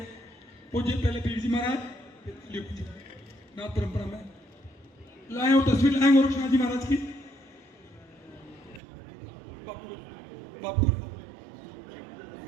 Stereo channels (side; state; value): left; drops out; at 8.8 s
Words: पूज्य पहले पीर जी महाराज नाथ परंपरा में लाए और तस्वीर लाए गोरक्षनाथ जी महाराज की। बापू